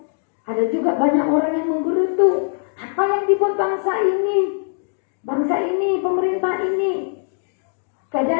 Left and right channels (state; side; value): silent; right; digital silence